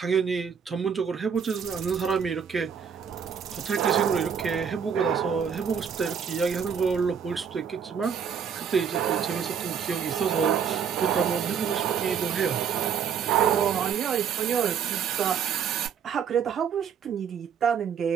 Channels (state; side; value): quieter; left; 7.3 dB